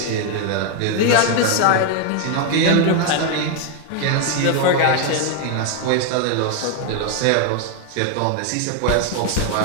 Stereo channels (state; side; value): different; both; correlation 0.01